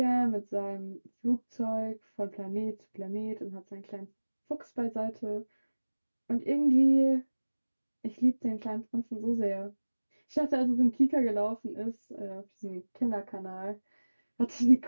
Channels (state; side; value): inverted; both; correlation -1.00